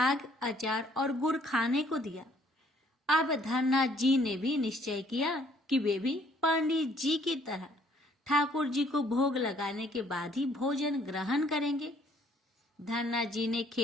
अचार और गुड़ खाने को दिया। अब धन्ना जी ने भी निश्चय किया कि वे भी पंडित जी की तरह ठाकुर जी को भोग लगाने के बाद ही भोजन ग्रहण करेंगे। धन्ना जी ने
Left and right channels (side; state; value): both; normal; correlation 0.62